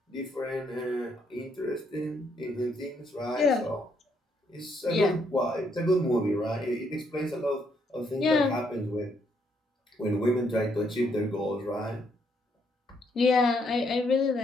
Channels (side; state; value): both; normal; correlation 0.73